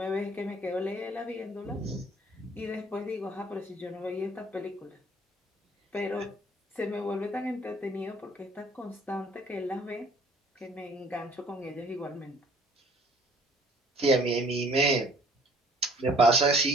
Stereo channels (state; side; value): normal; both; correlation 0.57